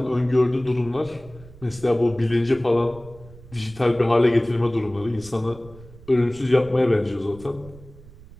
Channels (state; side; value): noise; right; rumble, 20 dB below the sound